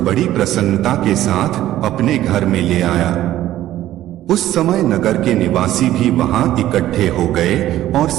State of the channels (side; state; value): left; quieter; 13.7 dB